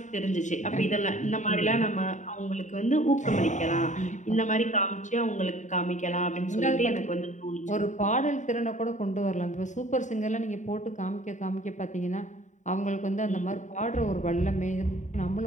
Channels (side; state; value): right; late; 0.36 ms